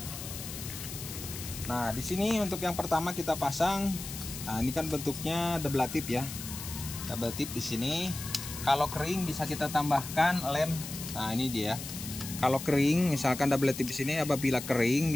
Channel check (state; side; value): noise; left; hiss, 9 dB below the sound